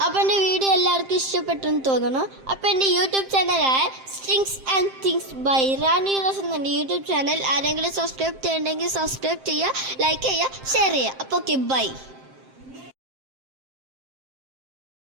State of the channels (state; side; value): late; left; 7.6 ms